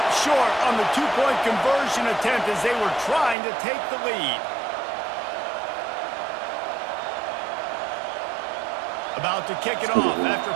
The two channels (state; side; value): drops out; left; at 3.4 s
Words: short on the 2-point conversion attempt as they were trying to take the lead. About to kick it off after